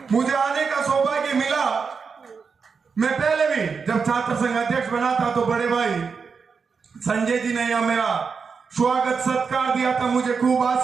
मुझे आने का सौभाग्य मिला। मैं पहले भी जब छात्र संघ अध्यक्ष बना था तो बड़े भाई संजय जी ने यह मेरा स्वागत सत्कार दिया था, मुझे खूब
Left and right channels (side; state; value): left; quieter; 5.5 dB